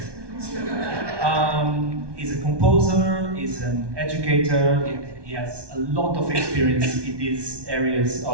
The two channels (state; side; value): late; left; 1.2 ms